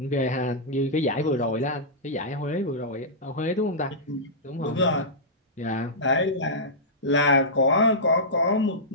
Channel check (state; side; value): normal; both; correlation -0.14